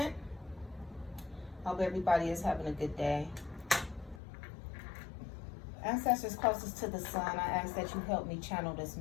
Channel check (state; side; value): drops out; right; at 4.2 s